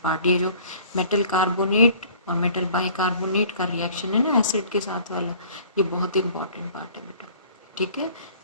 पार्ट। ये जो मेटल कार्बोनेट और मेटल बाइकार्बोनेट का रिएक्शन है ना एसिड के साथ वाला, ये बहुत इंपॉर्टेंट पार्ट है बेटा। ठीक है,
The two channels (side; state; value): both; inverted; correlation -0.52